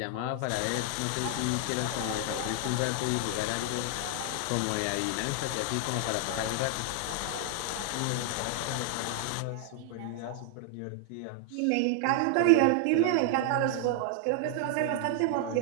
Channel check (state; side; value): different; both; correlation 0.00